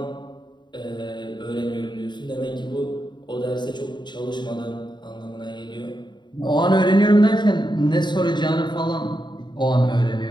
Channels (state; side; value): late; right; 0.22 ms